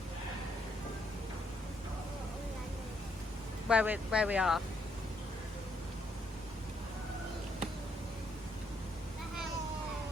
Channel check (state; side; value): normal; both; correlation 0.73